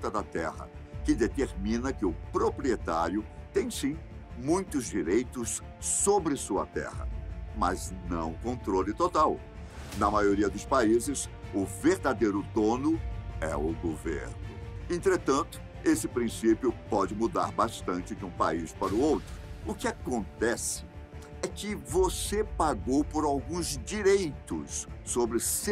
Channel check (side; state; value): both; identical; correlation 1.00